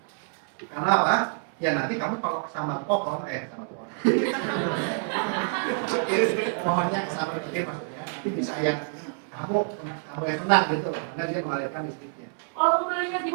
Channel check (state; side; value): silent; left; 60 dB below the other